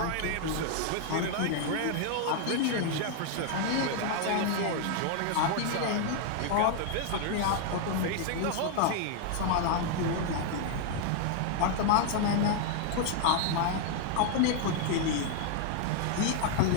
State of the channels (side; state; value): both; different; correlation 0.00